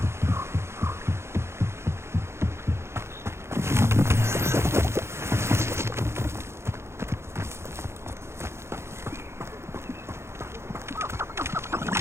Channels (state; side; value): late; left; 0.13 ms